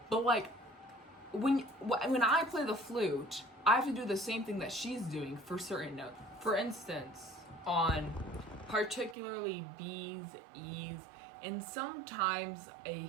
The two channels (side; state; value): left; drops out; at 9.2 s